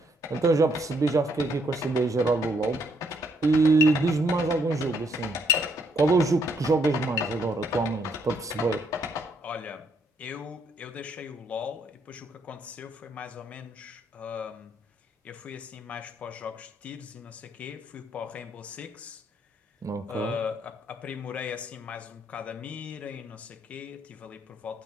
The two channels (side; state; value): both; normal; correlation 0.72